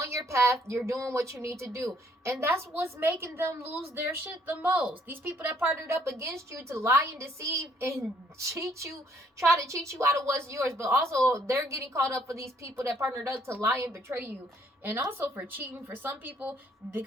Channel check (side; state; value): both; normal; correlation 0.65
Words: your path. You're doing what you need to do. And that's what's making them lose their shit the most. These people that partnered up against you to lie and deceive and cheat you, try to cheat you out of what's yours. But also, they're getting caught up for these people that partnered up to lie and betray you. And also for cheating for some people,